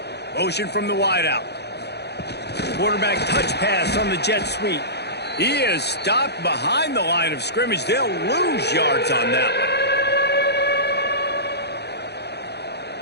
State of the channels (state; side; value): late; right; 0.48 ms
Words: Motion from the wideout. Quarterback touch pass on the jet sweep. He is stopped behind the line of scrimmage. They'll lose yards on that one.